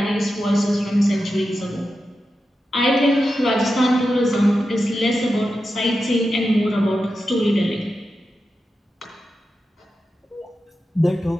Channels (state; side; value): normal; both; correlation 0.90